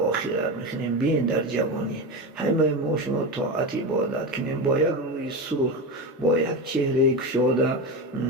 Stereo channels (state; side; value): normal; both; correlation 0.19